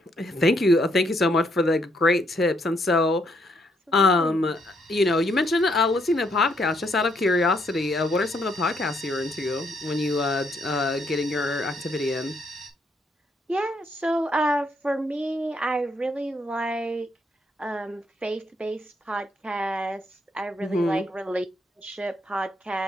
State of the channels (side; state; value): both; normal; correlation 0.73